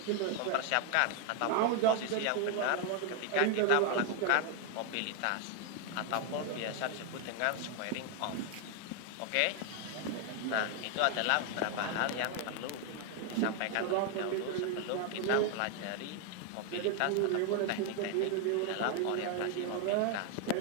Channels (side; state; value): both; different; correlation 0.01